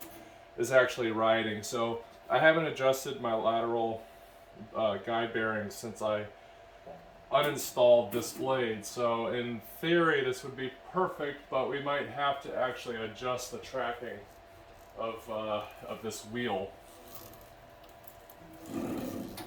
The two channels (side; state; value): both; identical; correlation 1.00